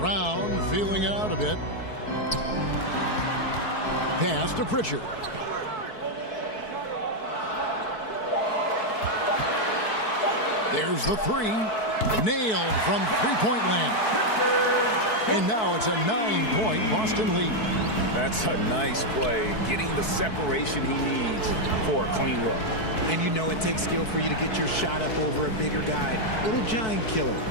feeling it out a bit. Pass to Pritchard. There's the 3. Nailed from three-point land. And now it's a 9-point Boston lead. That's a nice play, getting the separation he needs for a clean look. And you know it takes skill for you to get your shot up over a bigger guy. Little giant killer.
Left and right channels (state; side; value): late; right; 4.6 ms